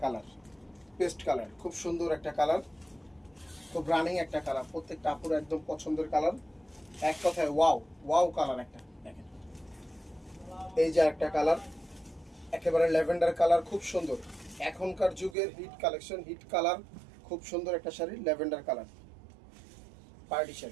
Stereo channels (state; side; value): drops out; left; at 15.4 s